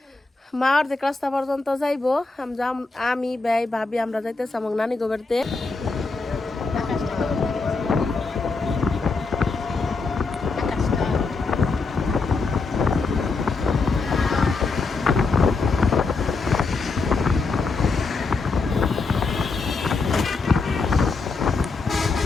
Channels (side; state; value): right; quieter; 4.1 dB